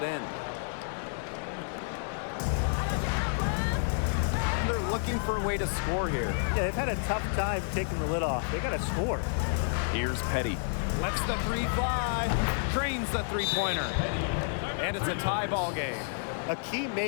in. And they're looking for a way to score here. Yeah, they've had a tough time taking the lid off. They got to score. Here's Petty. Lets the three fly. Drains the three-pointer. And it's a tie ball game. A key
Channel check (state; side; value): silent; right; digital silence